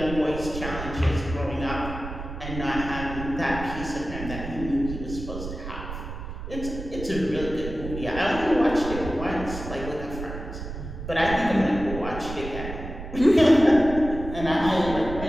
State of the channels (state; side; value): noise; right; rumble, 9 dB below the sound